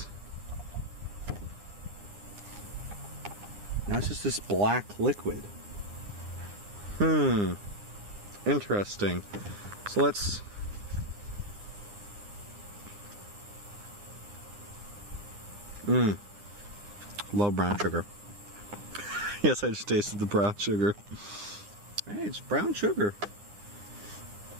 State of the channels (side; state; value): left; late; 9.8 ms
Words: Now it's just this black liquid. Interesting. So let's... Love brown sugar. Yes, I just tasted the brown sugar. Hey, it's brown sugar.